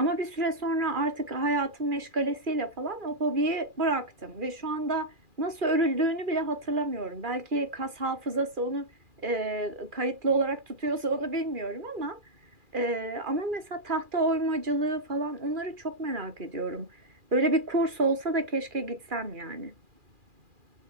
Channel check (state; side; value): late; left; 2.4 ms